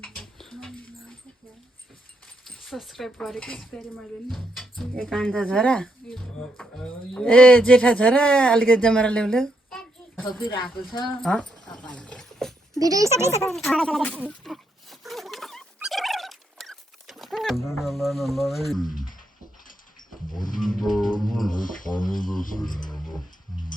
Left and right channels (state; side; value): normal; both; correlation 0.78